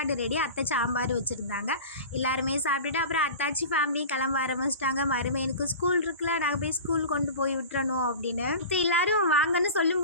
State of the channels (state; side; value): inverted; both; correlation -0.34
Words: ரெடி. அத்தை சாம்பார் வச்சுருந்தாங்க. எல்லாருமே சாப்பிட்டுட்டு அப்புறம் அத்தாச்சி ஃபேமிலியும் கிளம்ப ஆரம்பிச்சிட்டாங்க. மருமையனுக்கு ஸ்கூல் இருக்குல்ல, நாங்கள் போய் ஸ்கூல் கொண்டு போய் விட்டுறணும் அப்படின்னு. எல்லாரும் வாங்கன்னு சொல்லும்